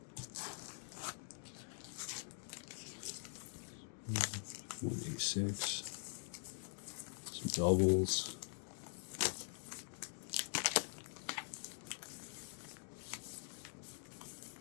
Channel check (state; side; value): silent; right; digital silence